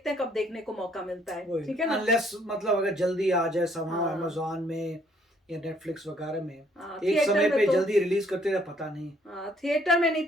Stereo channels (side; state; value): both; normal; correlation 0.65